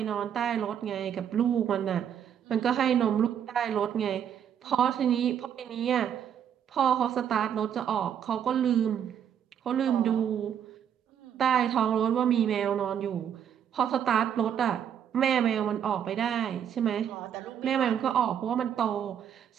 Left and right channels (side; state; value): left; quieter; 8.9 dB